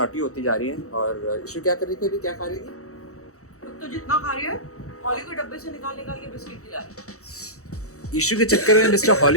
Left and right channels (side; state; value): right; late; 0.65 ms